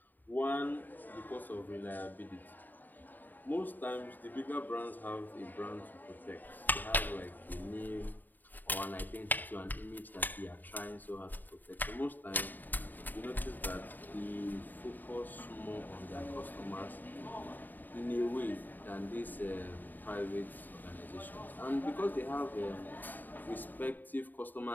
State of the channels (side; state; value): right; late; 0.088 ms